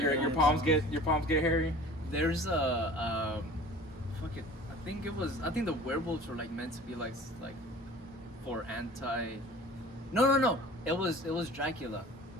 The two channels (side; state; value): both; normal; correlation 0.44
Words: your hairy palms hands. get hairy. There's a fuck it. I think the werewolves were like meant to be like for anti. No. It was Dracula.